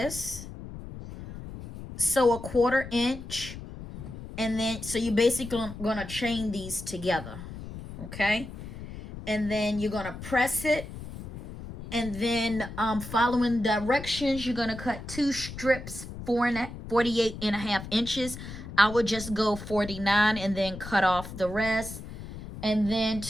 So a 1/4 inch, and then so you basically gonna chain these together, okay? And then you're gonna press it. And then following directions, you're going to cut 2 strips, 48.5 inches. I would just go 49 and then cut off the rest. And then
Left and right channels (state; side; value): noise; left; rumble, 11 dB below the sound